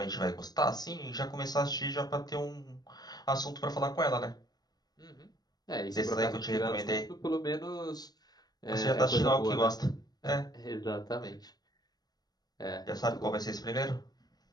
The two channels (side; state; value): right; late; 0.19 ms